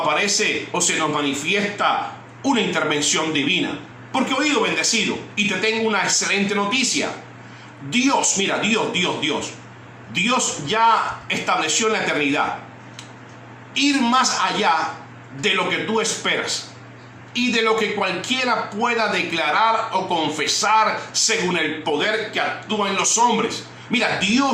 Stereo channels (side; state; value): both; identical; correlation 1.00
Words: o se nos manifiesta una intervención divina. Porque, oído bendecido, y te tengo una excelente noticia. Dios, mira, Dios ya estableció en la eternidad ir más allá de lo que tú esperas y de lo que cualquiera pueda declarar o confesar según el poder que actúa en los hombres. Mira,